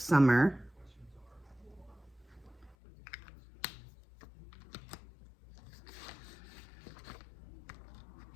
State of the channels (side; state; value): right; drops out; at 2.8 s